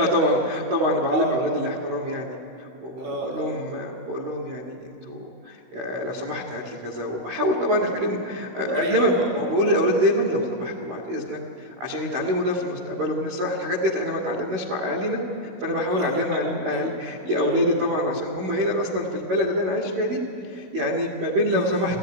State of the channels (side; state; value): left; late; 16 ms